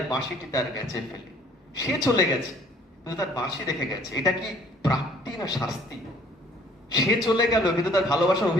বাঁশিটি তার গেছে ফেলে। সে চলে গেছে কিন্তু তার বাঁশি রেখে গেছে। এটা কি প্রাপ্তি না শাস্তি? সে চলে গেল কিন্তু তার ভালোবাসার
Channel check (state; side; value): normal; both; correlation 0.57